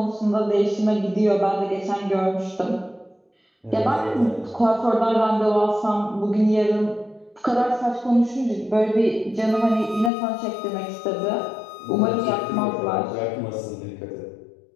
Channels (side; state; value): right; drops out; at 10.1 s